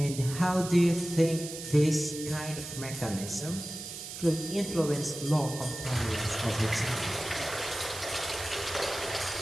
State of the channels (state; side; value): noise; right; hiss, 9 dB below the sound